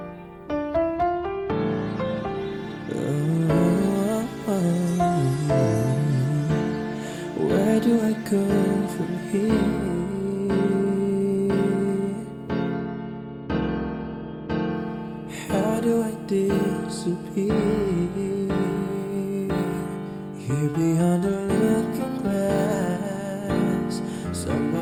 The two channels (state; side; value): identical; both; correlation 1.00